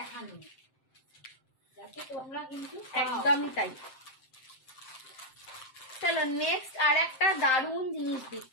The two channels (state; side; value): late; right; 7.7 ms